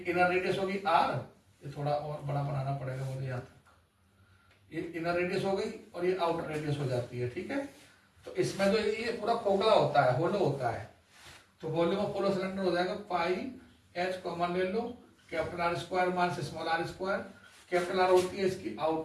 इनर रेडियस होगी R, ये थोड़ा और बड़ा बनाना पड़ेगा मुझे यहाँ तक। ये इनर रेडियस हो गई और ये आउटर रेडियस हो जाती है, ठीक है। तो इसमें जो ये पूरा खोखला होता है, होलो होता है। तो वॉल्यूम ऑफ होलो सिलेंडर हो जाएगा πH, कॉमन ले लो, R² minus r²। Capital R होती है इसकी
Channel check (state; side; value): identical; both; correlation 1.00